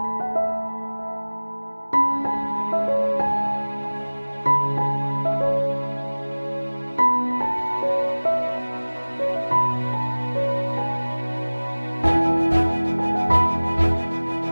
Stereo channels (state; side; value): inverted; both; correlation -1.00